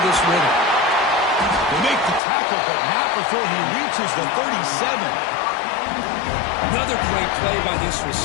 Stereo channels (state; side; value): drops out; right; at 2.2 s